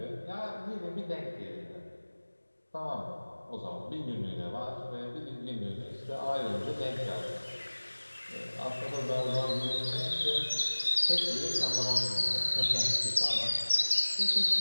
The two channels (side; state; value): both; inverted; correlation -1.00